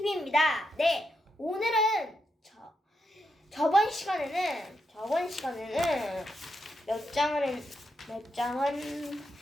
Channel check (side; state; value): both; normal; correlation 0.83